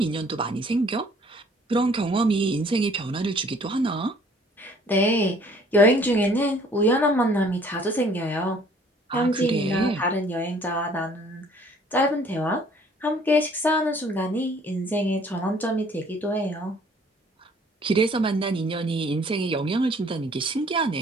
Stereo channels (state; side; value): normal; both; correlation 0.57